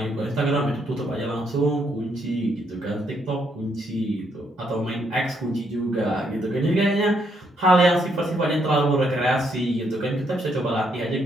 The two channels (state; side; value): normal; both; correlation 0.74